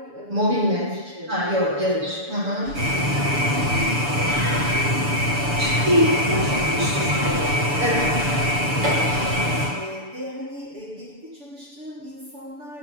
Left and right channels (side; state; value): left; late; 6.9 ms